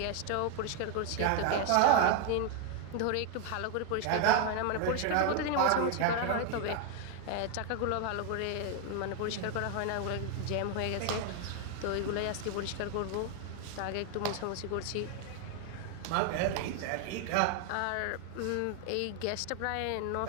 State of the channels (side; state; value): both; different; correlation 0.01